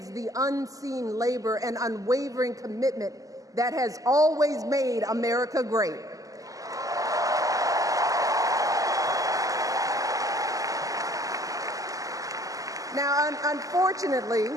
the unseen labor and unwavering commitment that has always made America great. Now, unfortunately,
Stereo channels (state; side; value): late; left; 0.17 ms